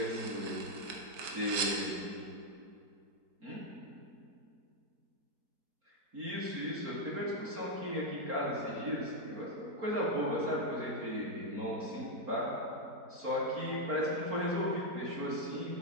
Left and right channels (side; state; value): left; late; 5.0 ms